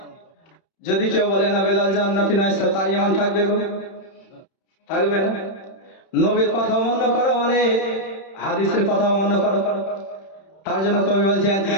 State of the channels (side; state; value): right; late; 31 ms